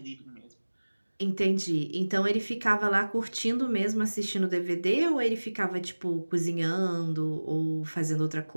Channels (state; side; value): inverted; both; correlation -1.00